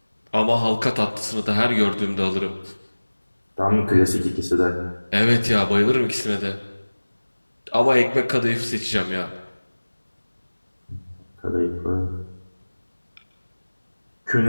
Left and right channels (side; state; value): both; inverted; correlation -1.00